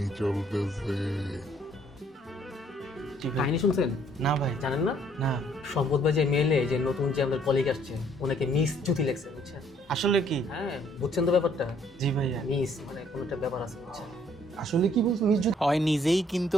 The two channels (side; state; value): both; normal; correlation 0.64